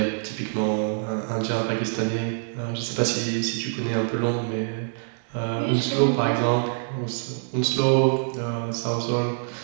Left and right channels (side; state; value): left; silent; digital silence